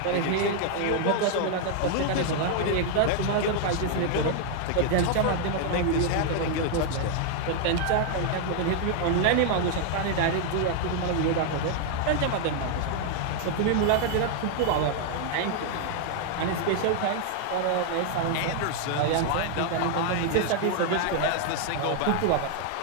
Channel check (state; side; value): different; both; correlation 0.00